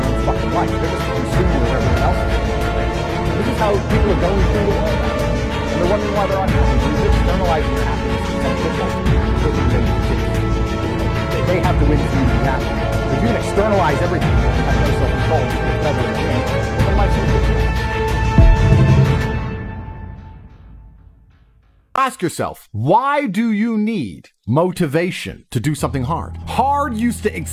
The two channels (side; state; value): both; identical; correlation 1.00